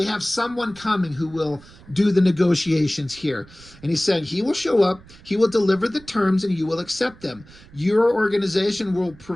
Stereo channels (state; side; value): noise; right; rumble, 23 dB below the sound